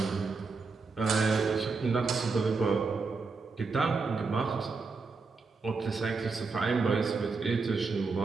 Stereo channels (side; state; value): left; quieter; 4.4 dB